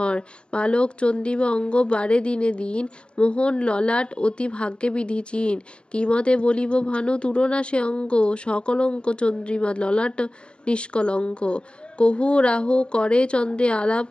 বালক চন্দ্রিমা অঙ্গ বাড়ে দিনে দিন, মোহন ললাট অতি ভাগ্যে বিধি চিন। কিমতে বলিব ভানু তুলনা সে অঙ্গ, সকলঙ্ক চন্দ্রিমা ললাট নিষ্কলঙ্ক। কহু রাহু করে চন্দ্রে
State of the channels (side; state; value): right; late; 0.053 ms